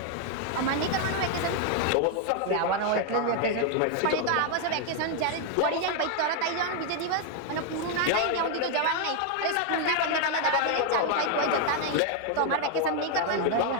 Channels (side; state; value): both; different; correlation 0.00